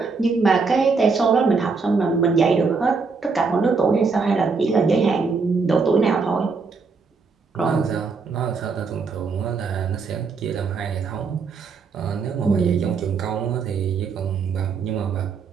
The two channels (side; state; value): left; quieter; 4.8 dB